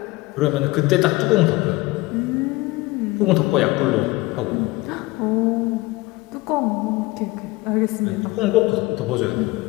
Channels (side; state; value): right; quieter; 21.3 dB